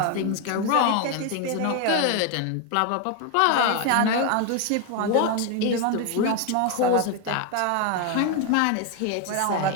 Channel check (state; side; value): different; both; correlation 0.01